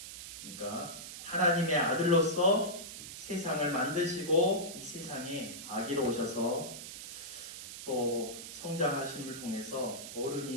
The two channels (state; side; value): noise; right; hiss, 10 dB below the sound